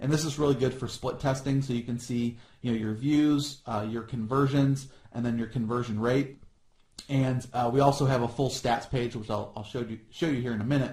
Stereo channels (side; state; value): both; identical; correlation 1.00